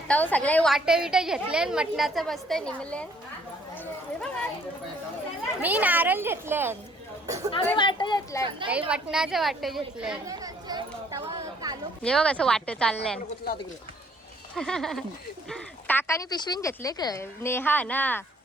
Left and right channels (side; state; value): both; normal; correlation 0.62